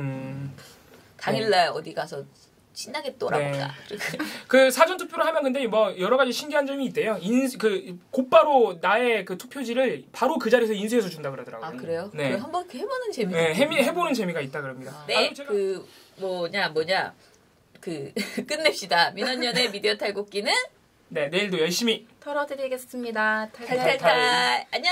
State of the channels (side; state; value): both; identical; correlation 1.00